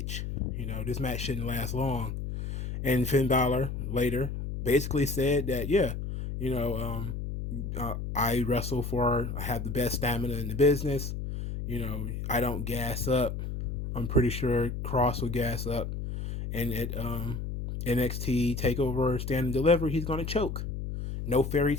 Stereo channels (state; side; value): noise; left; hum, 5 dB below the sound